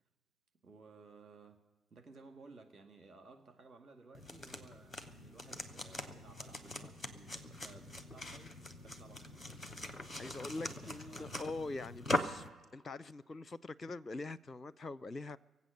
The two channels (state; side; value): normal; both; correlation 0.78